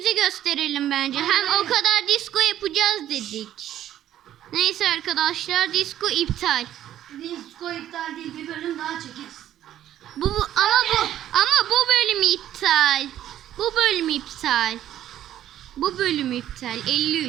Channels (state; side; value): quieter; left; 11.9 dB